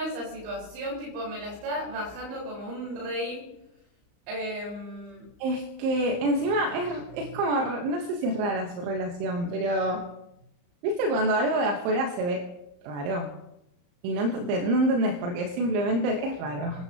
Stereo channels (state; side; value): late; left; 34 ms